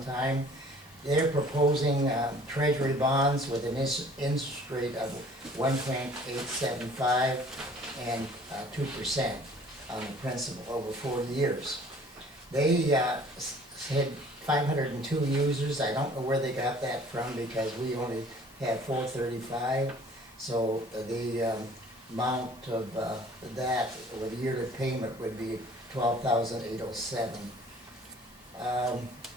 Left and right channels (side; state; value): both; normal; correlation 0.52